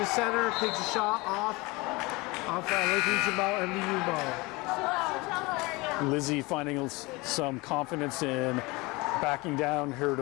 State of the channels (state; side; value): quieter; right; 24.1 dB